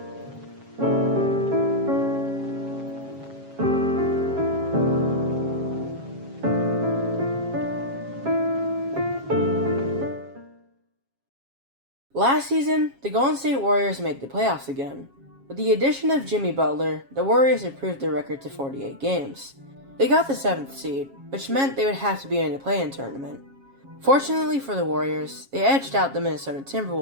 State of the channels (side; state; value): left; late; 7.3 ms